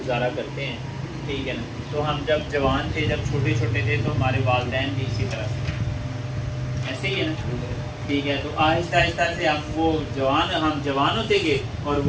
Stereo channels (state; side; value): identical; both; correlation 1.00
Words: کرتے ہیں، ٹھیک ہے نا. تو ہم جب جوان تھے، جب چھوٹے چھوٹے تھے، تو ہمارے والدین بھی اسی طرح سے ایسے ہی ہے نا، ٹھیک ہے. تو آہستہ آہستہ سے ہم جوان ہوتے گئے اور